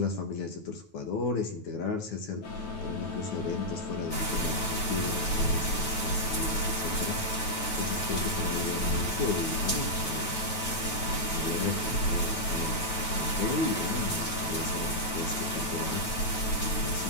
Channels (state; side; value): late; right; 9.2 ms